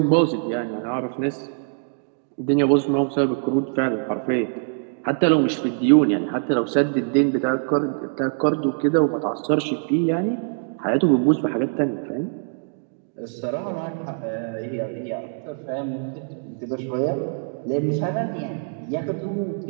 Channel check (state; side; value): silent; left; digital silence